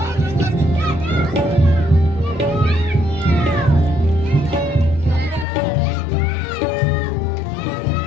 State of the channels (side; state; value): right; drops out; at 5.5 s